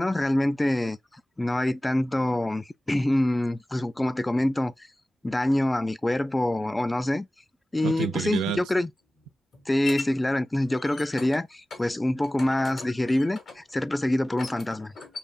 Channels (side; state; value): both; normal; correlation 0.97